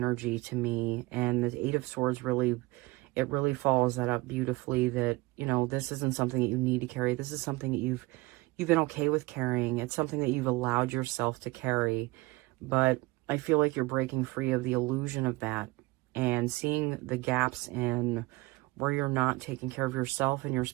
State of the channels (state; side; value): quieter; left; 22.4 dB